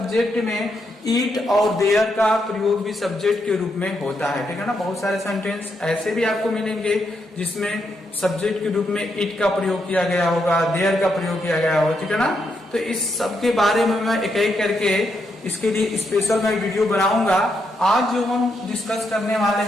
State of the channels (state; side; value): normal; both; correlation 0.80